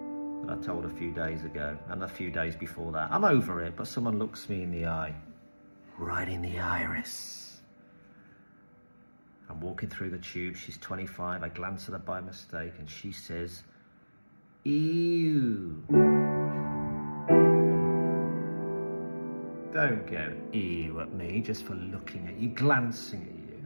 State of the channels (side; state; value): both; inverted; correlation -1.00